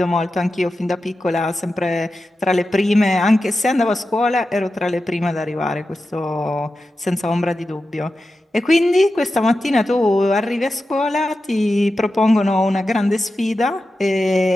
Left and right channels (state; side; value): normal; both; correlation 0.92